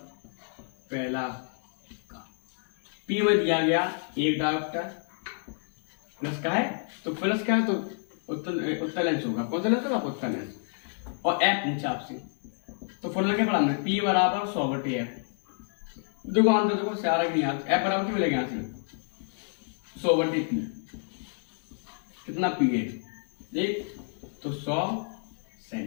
पहला का P में दिया गया एक डायरेक्टर प्लस का है, तो प्लस का है तो उत्तर लेंस होगा। कौन सा लेंस होगा? उत्तर लेंस। और F नीचे आपसे, तो फॉर्मूला क्या पढ़ा हमने? P बराबर 100/F। देखो आंसर देखो सारा कि नहीं आता। F बराबर क्या मिलेगा यहाँ से? 100/P। कितना P है? देख तो 100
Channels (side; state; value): right; silent; 58 dB below the other